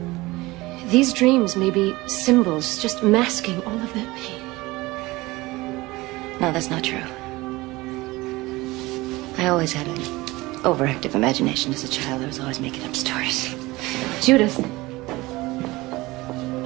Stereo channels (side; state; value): left; quieter; 20.8 dB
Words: These dreams may be symbols just masking all of that pain. No, that's not true. I always had an overactive imagination as a child. I was always making up stories. Judith,